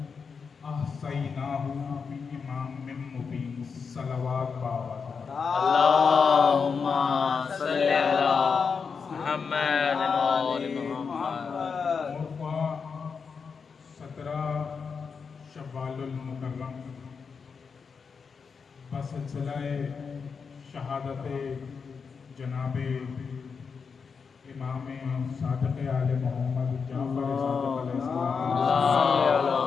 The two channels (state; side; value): quieter; right; 5.6 dB